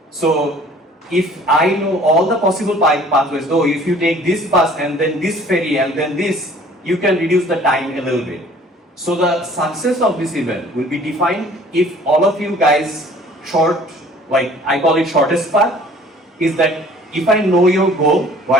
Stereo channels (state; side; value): normal; both; correlation 0.52